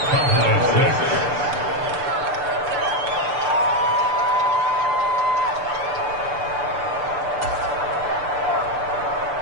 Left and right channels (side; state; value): left; late; 6.8 ms